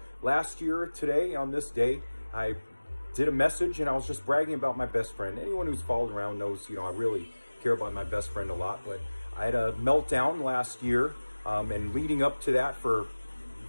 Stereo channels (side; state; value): both; inverted; correlation -1.00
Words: last year, today, on this day, I did a message and I was just bragging about my best friend. Anyone who's followed around knows, you know, I really care about my best friend a lot. But I had a meltdown last year, and leading up to that for